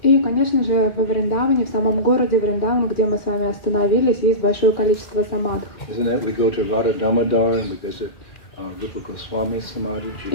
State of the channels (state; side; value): late; right; 2.4 ms